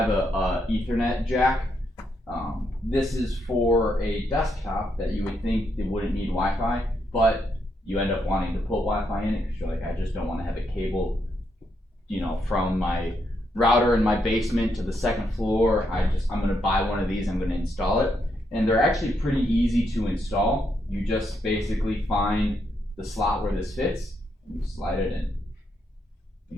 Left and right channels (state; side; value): normal; both; correlation 0.79